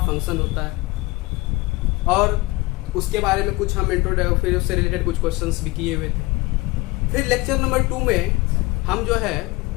होता है, और उसके बारे में कुछ हम इंट्रोडक्शन, फिर उससे रिलेटेड कुछ क्वेश्चंस भी किए हुए थे। फिर लेक्चर नंबर 2 में हम जो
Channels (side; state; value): right; quieter; 22.4 dB